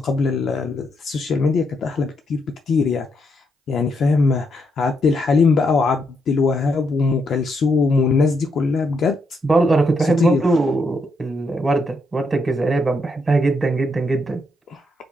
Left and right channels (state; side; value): normal; both; correlation 0.78